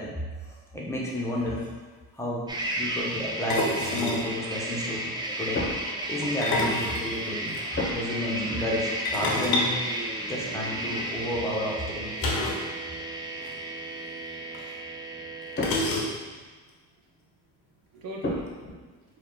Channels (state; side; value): normal; both; correlation 0.14